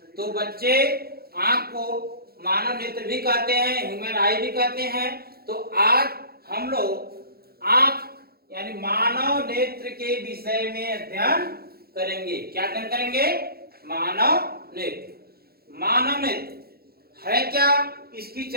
तो बच्चे, आंख को मानव नेत्र भी कहते हैं, ह्यूमन आई भी कहते हैं। तो आज हम लोग आंख यानी मानव नेत्र के विषय में अध्ययन करेंगे। क्या अध्ययन करेंगे? मानव नेत्र। मानव नेत्र है क्या, इसकी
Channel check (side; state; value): left; late; 0.45 ms